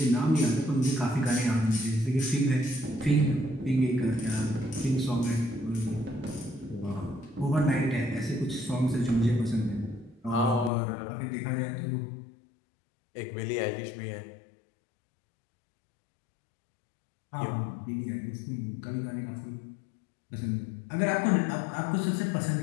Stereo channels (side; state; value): right; drops out; at 10.7 s